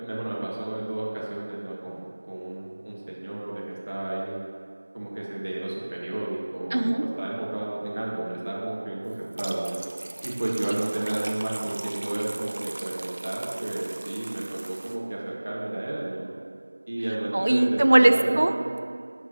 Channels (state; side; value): inverted; both; correlation -1.00